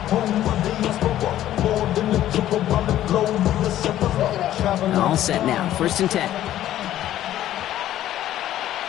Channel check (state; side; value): quieter; right; 12.8 dB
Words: All set now, first and 10.